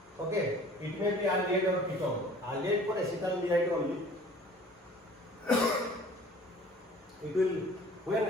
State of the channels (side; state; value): both; normal; correlation 0.50